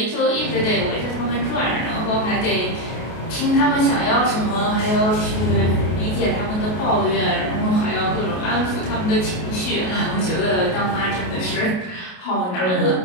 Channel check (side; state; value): right; late; 33 ms